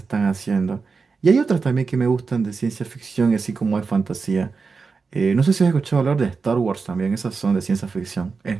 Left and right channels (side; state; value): left; quieter; 4.8 dB